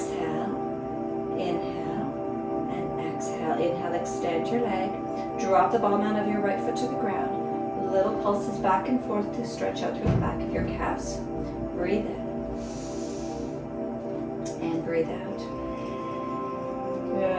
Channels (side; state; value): both; identical; correlation 1.00